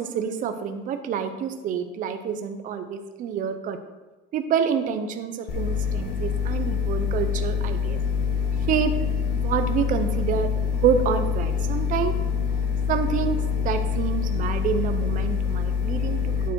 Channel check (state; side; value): normal; both; correlation 0.37